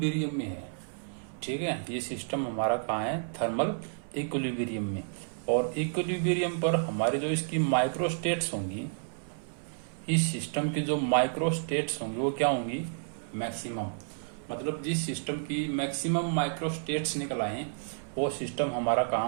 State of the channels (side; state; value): left; silent; 57 dB below the other